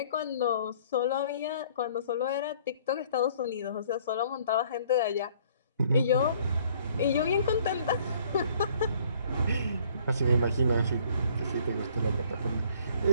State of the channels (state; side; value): inverted; both; correlation -0.58